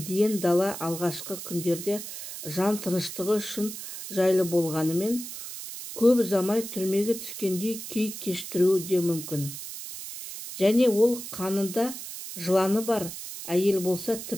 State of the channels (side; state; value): right; noise; hiss, 10 dB below the sound